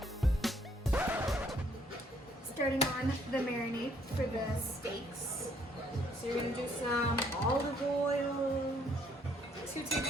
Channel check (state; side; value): normal; both; correlation 0.66